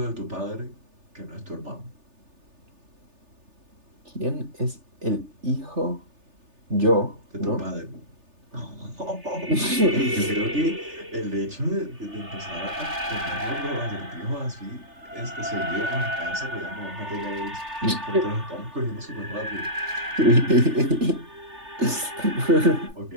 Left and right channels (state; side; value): late; left; 3.3 ms